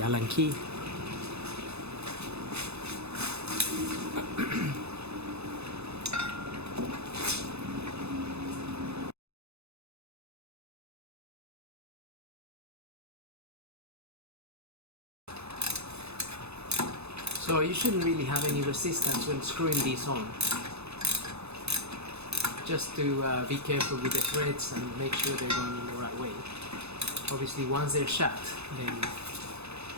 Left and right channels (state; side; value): late; left; 0.80 ms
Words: Allen key. So you shouldn't really have any resistance when screwing these on. Just to be careful with the threads and make sure they're going in the right way. Obviously once they're shut, then